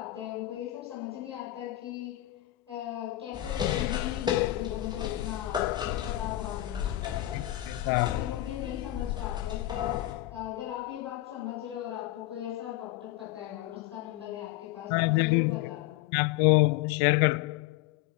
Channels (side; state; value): right; quieter; 15.7 dB